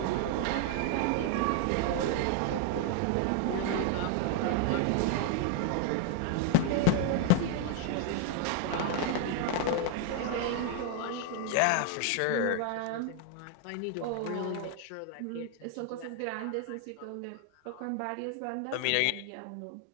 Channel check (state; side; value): different; both; correlation 0.00